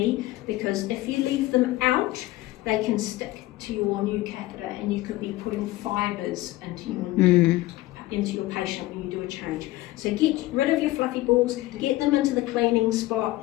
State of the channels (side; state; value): right; quieter; 17.6 dB